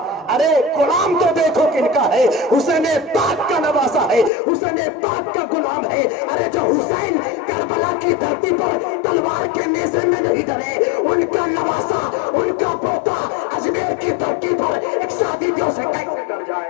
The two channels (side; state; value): right; drops out; at 4.3 s